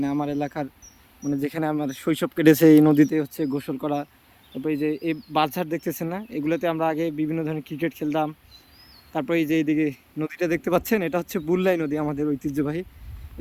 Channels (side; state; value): both; identical; correlation 1.00